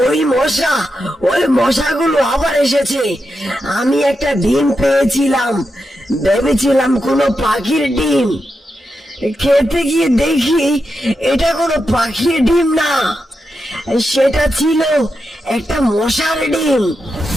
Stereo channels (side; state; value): both; normal; correlation 0.87